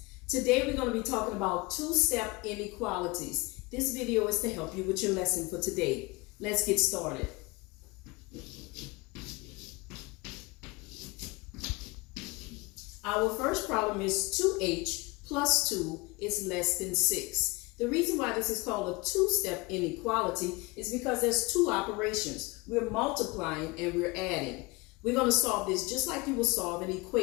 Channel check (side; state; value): right; quieter; 24.9 dB